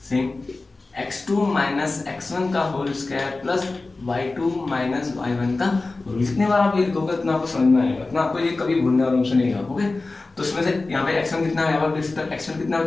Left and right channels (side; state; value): right; quieter; 3.4 dB